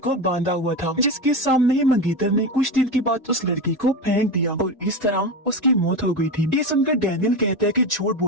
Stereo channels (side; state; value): both; normal; correlation 0.20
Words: बांधा हुआ था, जिसके सामने ही मंगेतर ने कुछ दिन के बाद उस लड़की को फेंक दिया और इस तरह उसकी मौत हो गई थी। ये सुनकर डैनियल कहता है कि झूठ